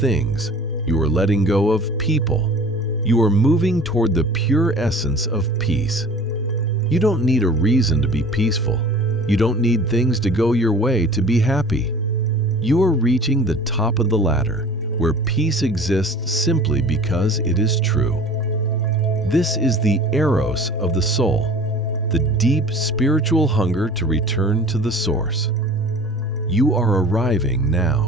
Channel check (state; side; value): normal; both; correlation 0.44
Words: You are letting go of people. You are moving toward the pure essence of peace. You don't need a reason to be peaceful. You don't need things to go your way to be happy. You are reaching the top of the ladder, where peace exists simply because it is true. This is the eros of the soul, the deep spiritual hunger to return to the source. You are arriving